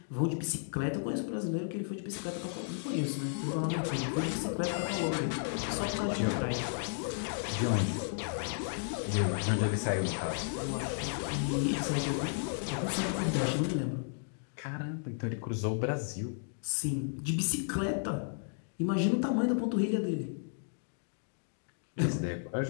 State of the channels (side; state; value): right; silent; digital silence